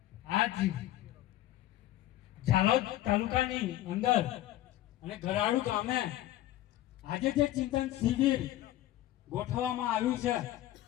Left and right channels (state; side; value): quieter; right; 14.4 dB